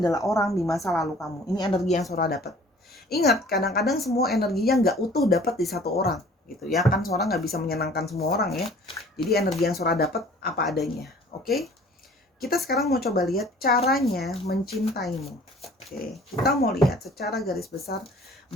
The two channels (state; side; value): normal; both; correlation 0.51